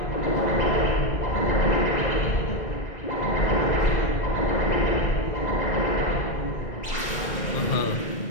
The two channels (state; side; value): late; right; 2.1 ms